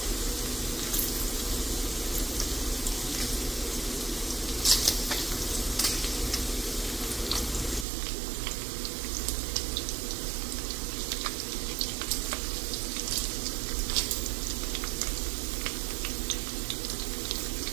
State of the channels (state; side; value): drops out; left; at 7.9 s